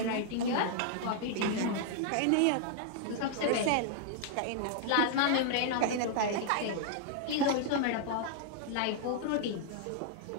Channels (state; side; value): different; both; correlation -0.01